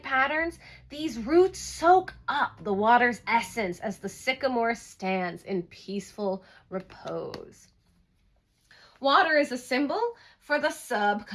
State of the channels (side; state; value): both; identical; correlation 1.00